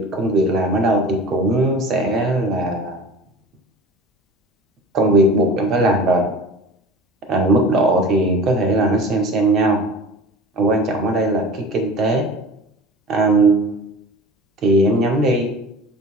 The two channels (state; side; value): normal; both; correlation 0.38